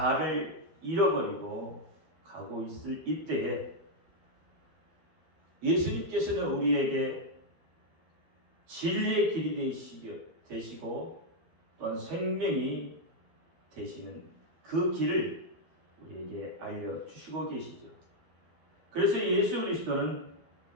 잃어버리고 가고 있을 이때에 예수님께서는 우리에게 진리의 길이 되시고 또한 생명이 되시는 그 길을 우리에게 알려주시고 계시죠. 그래서 예수 그리스도는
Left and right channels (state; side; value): late; left; 12 ms